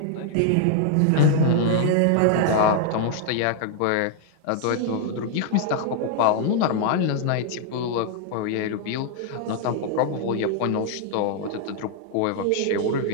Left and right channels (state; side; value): different; both; correlation 0.00